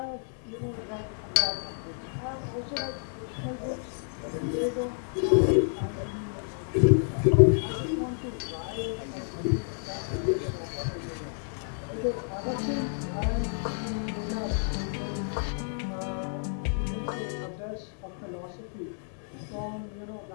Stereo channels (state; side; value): silent; right; digital silence